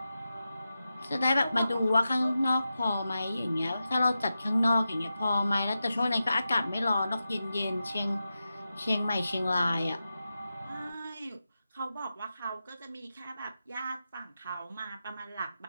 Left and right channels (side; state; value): both; inverted; correlation -0.91